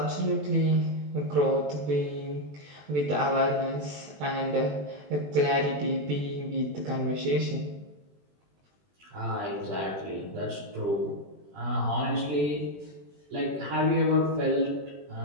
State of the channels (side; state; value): left; late; 21 ms